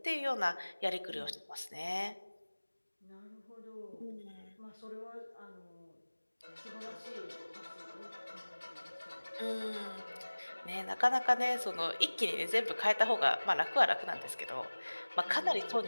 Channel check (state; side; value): inverted; both; correlation -1.00